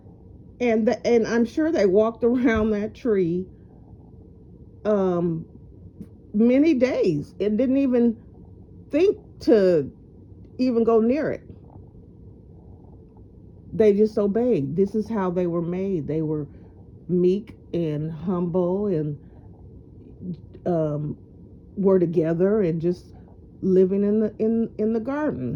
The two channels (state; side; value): identical; both; correlation 1.00